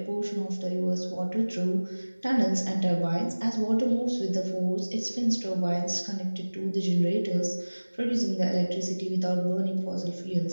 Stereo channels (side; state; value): both; inverted; correlation -1.00